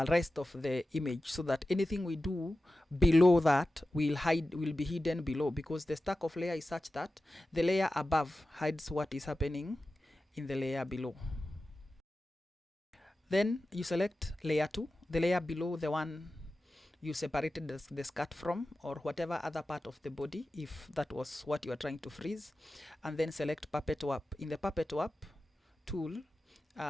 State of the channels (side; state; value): both; normal; correlation 0.94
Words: rest of the image, so that anything we do below that will be hidden below, because the stack of layer is such that the layer above hides what is happening in the layer below. Then you select layer 2, the layer below the one you separated the skirt from, or whatever other part of the body, if that was what you are trying to freeze, and then select puppet swap. In the puppet swap tool,